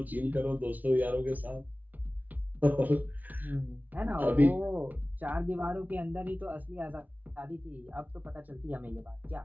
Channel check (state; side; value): late; left; 0.077 ms